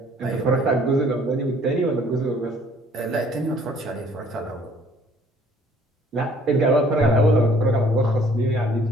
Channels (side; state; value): both; normal; correlation 0.58